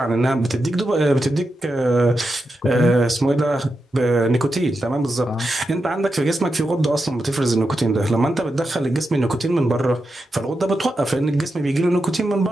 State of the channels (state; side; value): normal; both; correlation 0.88